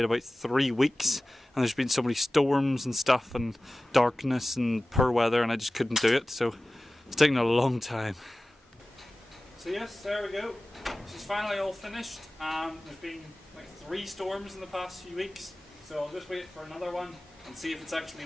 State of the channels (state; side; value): normal; both; correlation 0.97